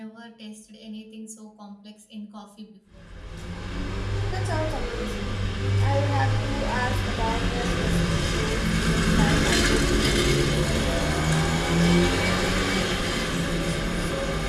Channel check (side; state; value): both; identical; correlation 1.00